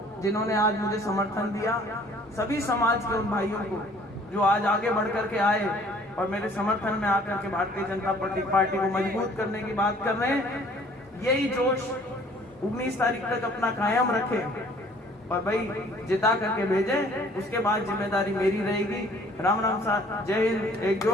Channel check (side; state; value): both; normal; correlation 0.55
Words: जिन्होंने आज मुझे समर्थन दिया, सभी समाज के उन भाइयों को जो आज आगे बढ़ करके आए और मेरे समर्थन में आकर के भारतीय जनता पार्टी को मजबूत करने की बात कर रहे हैं। यही जोश 19 तारीख तक अपना कायम रखें और भाई जिता करके भेजें। उसके बाद जिम्मेदारी मेरी रहेगी। राम राम साथ, जय हिंद। एक